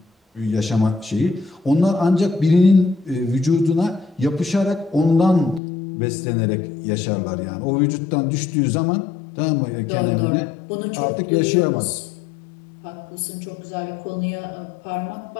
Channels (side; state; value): right; drops out; at 5.6 s